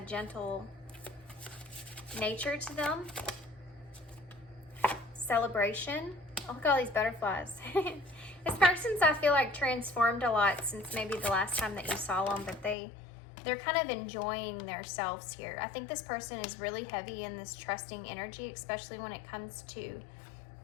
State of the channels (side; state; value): right; drops out; at 12.8 s